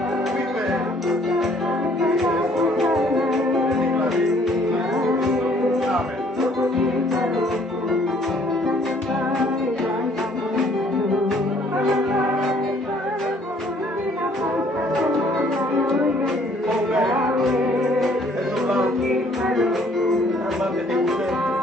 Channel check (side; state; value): both; normal; correlation 0.61